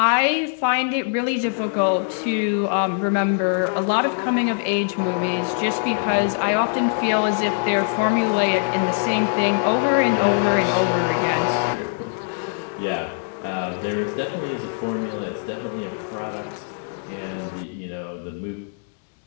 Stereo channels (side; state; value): right; silent; digital silence